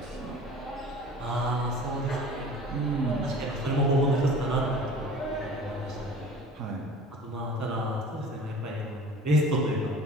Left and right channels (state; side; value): normal; both; correlation 0.43